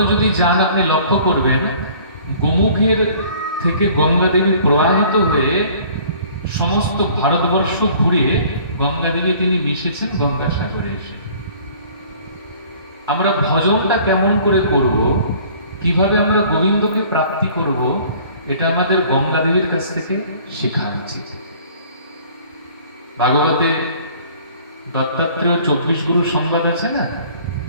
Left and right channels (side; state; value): both; inverted; correlation -0.52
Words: যদি যান, আপনি লক্ষ্য করবেন গোমুখের থেকে গঙ্গা দেবী প্রবাহিত হয়ে সমস্ত ভারতবর্ষ ঘুরে গঙ্গা দেবী তিনি মিশেছেন গঙ্গাসাগরে এসে। আমরা ভজনটা কেমন করে করব, কিভাবে আমরা গোবিন্দকে প্রাপ্তি করব, এটা আমাদের গঙ্গা দেবীর কাছ থেকে শেখা উচিত। ভাগবতে দত্তাত্রেয় 24 গুরু সংবাদ আছে না?